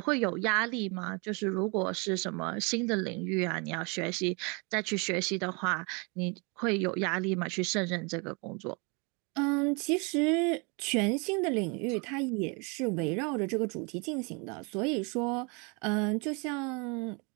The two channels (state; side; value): quieter; left; 31.6 dB